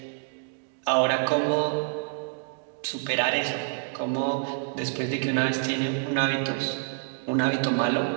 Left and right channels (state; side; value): silent; left; 60 dB below the other